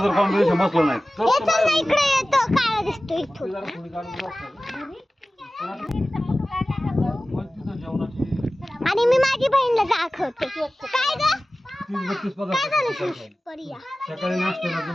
जर कॉम्बिनेशन बसलं नाही तर इकडे येतो, काळा दिसतो इथून. आणि मी माझी बहीणला दाखवते. काय ग? काय झालं? परिया सकाळी नाश्त्याला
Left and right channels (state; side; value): normal; both; correlation 0.97